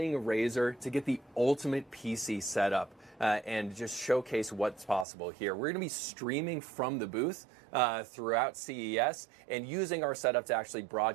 Razer to get the ultimate PC setup and just showcase what's possible here. We're going to be streaming from the booth throughout CES and using our setup to actually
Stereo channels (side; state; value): left; drops out; at 5.1 s